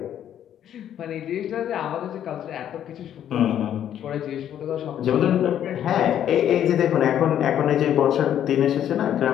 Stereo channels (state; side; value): quieter; right; 10.3 dB